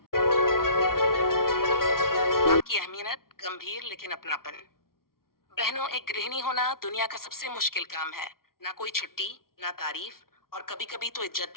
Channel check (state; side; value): late; right; 0.93 ms